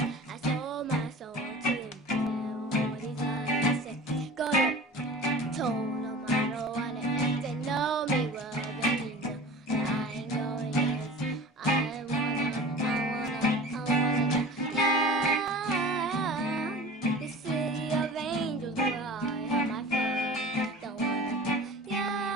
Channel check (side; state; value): both; normal; correlation 0.39